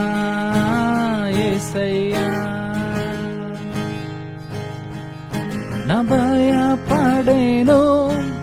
యేసయ్య. ನ ಭಯ ಪಡೆನು,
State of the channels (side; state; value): both; identical; correlation 1.00